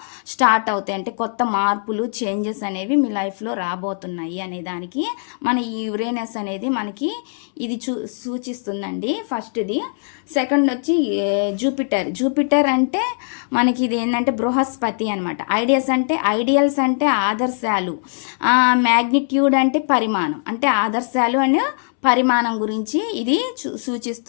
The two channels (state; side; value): silent; right; 65 dB below the other